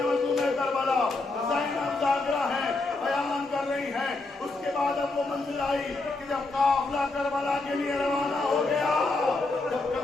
مظلوم کربلا زینب ذاکرہ ہے بیان کر رہی ہیں. اس کے بعد اب وہ منزل آئی کہ جب قافلہ کربلا کے لیے روانہ ہو گیا, جب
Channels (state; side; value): quieter; right; 3.3 dB